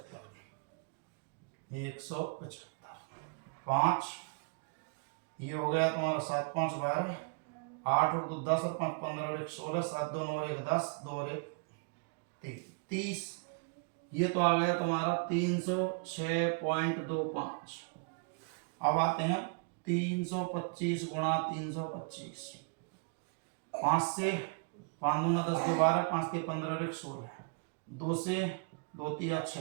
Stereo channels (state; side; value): quieter; left; 36.9 dB